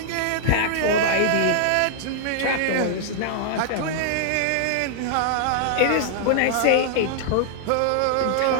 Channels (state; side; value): different; both; correlation -0.01